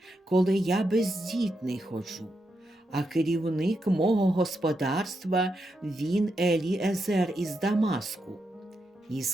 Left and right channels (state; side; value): normal; both; correlation 0.84